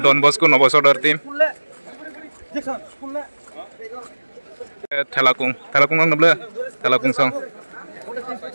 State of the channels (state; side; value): inverted; both; correlation -1.00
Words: Don Bosco nopo saudara tim Thelakung ang nabla Thelakung song